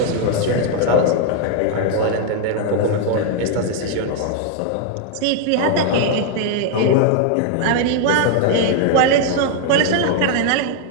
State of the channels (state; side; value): different; both; correlation 0.00